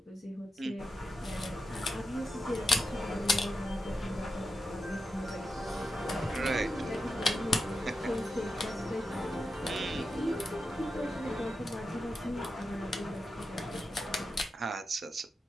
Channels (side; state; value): both; normal; correlation 0.88